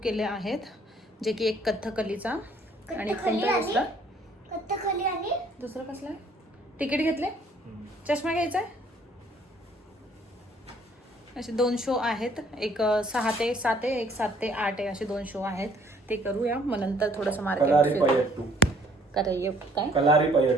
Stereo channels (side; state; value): both; normal; correlation 0.60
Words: केले आहेत, जे की एक कथ्थकलीचा आणि कोणता दुसरा कथ्थकली आणि दुसरा कसला आहे. तिकीट घेतले. चष्मा घ्यायचा आहे. असे 2 शो आहेत. एक 6 ते 7 आहे, एक 7 ते 8 आहे. असे 2 शो आहेत. ते करूया. मग नंतर थोडंसं मार्केट काय